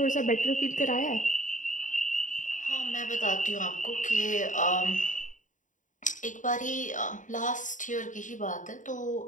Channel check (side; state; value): right; late; 0.37 ms